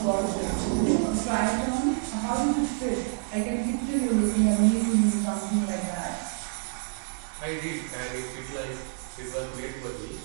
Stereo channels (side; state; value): left; silent; digital silence